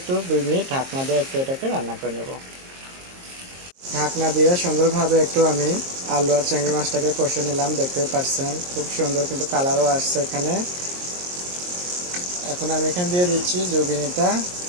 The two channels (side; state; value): left; late; 22 ms